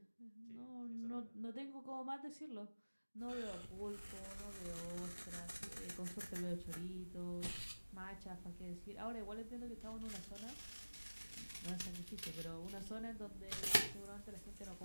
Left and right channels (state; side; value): inverted; both; correlation -1.00